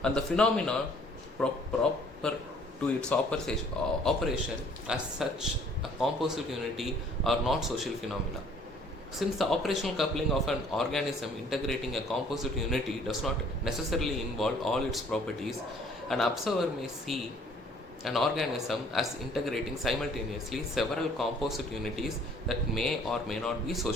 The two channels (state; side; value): normal; both; correlation 0.58